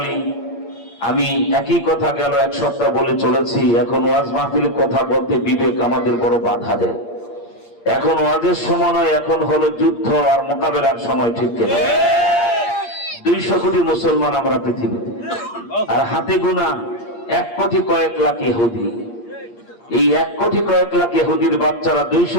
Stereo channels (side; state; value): right; late; 8.6 ms